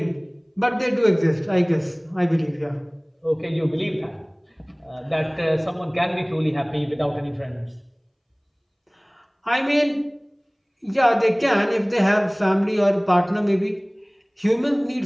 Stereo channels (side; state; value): both; identical; correlation 1.00